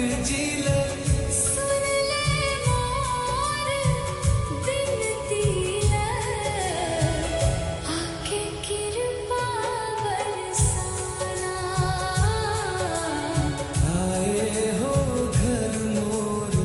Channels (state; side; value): identical; both; correlation 1.00